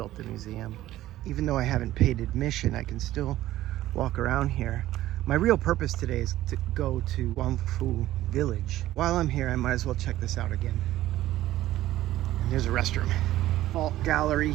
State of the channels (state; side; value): quieter; left; 14.6 dB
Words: the museum. Even though I haven't paid admission, I can still walk around here. My real purpose today is to go to Guangfu Village. While I'm here, I might as well check this out again. And there's a restroom. Fault gallery